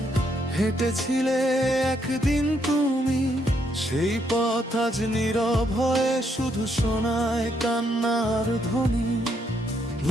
হেঁটেছিলে একদিন তুমি, সেই পথ আজ নীরব হয়ে শুধু শোনায় কান্নার ধ্বনি।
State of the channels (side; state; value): both; normal; correlation 0.75